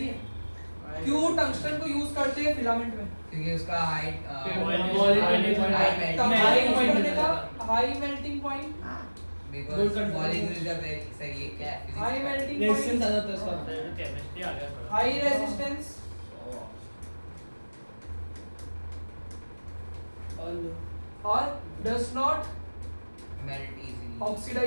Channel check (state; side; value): inverted; both; correlation -1.00